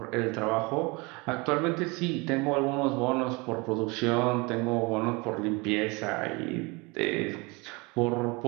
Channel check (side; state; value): left; quieter; 26.4 dB